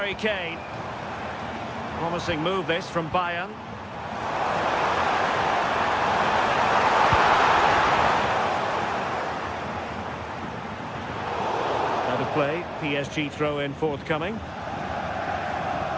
Kane. Promising move this from Bayern. Out of play, PSG throw-in forthcoming.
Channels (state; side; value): identical; both; correlation 1.00